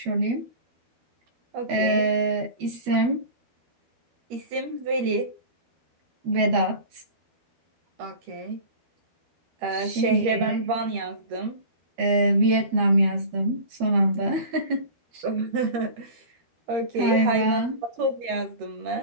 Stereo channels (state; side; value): late; left; 13 ms